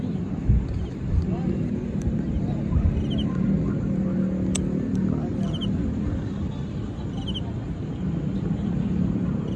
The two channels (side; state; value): both; identical; correlation 1.00